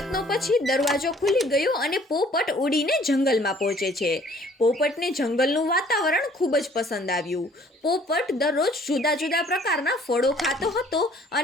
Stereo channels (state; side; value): normal; both; correlation 0.57